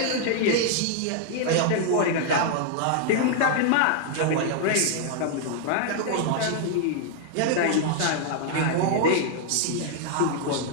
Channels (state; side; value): different; both; correlation -0.01